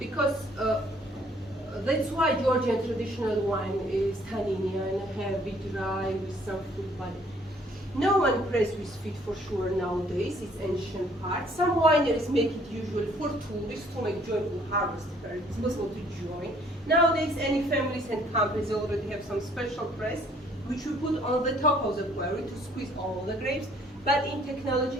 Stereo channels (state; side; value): normal; both; correlation 0.61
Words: that's why Georgian traditional wine is tanninian, heavy, dry, with some fruit body. No one press with feet for sure nowadays, it's ancient part. Some wineries make it usually for tourists to make joyful harvest fair. It's possible to join. Nowadays, any families and companies already have some special press, which we put on the top of the query to squeeze all the grapes. But in technology,